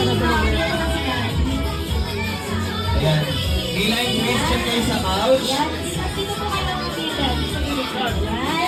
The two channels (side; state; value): both; identical; correlation 1.00